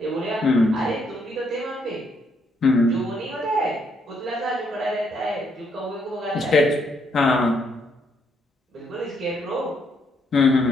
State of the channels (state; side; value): normal; both; correlation 0.73